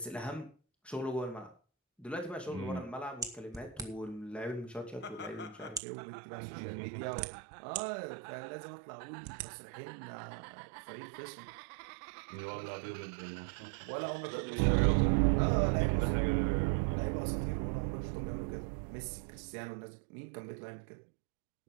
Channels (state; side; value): drops out; left; at 5.8 s